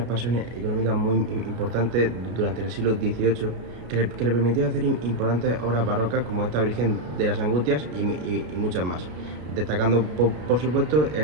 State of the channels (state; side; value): late; left; 33 ms